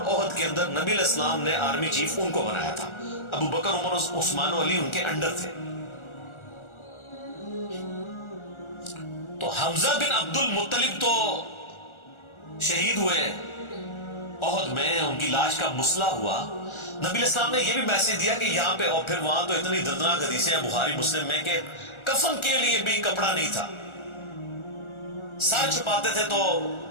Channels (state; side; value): late; right; 1.4 ms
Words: احد کے اندر نبی علیہ السلام نے آرمی چیف ان کو بنایا تھا. ابو بکر، عمر، عثمان و علی ان کے انڈر تھے. تو حمزہ بن عبد المطلب تو شہید ہوئے احد میں، ان کی لاش کا مسئلہ ہوا. نبی علیہ السلام نے یہ بھی میسج دیا کہ یہاں پہ، اور پھر وہاں تو اتنی دردناک حدیثیں ہیں بخاری مسلم میں کہ کفن کے لیے بھی کپڑا نہیں تھا، سر چھپاتے تھے تو